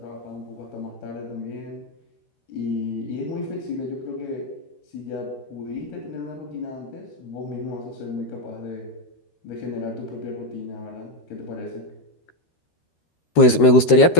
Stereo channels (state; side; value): late; right; 13 ms